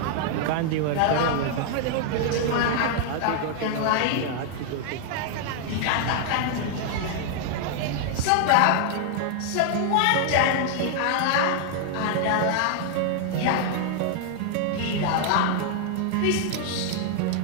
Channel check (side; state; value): both; different; correlation 0.00